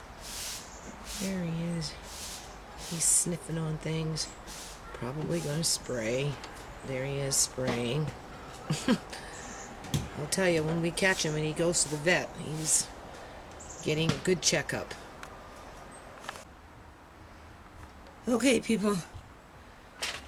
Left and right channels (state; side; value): identical; both; correlation 1.00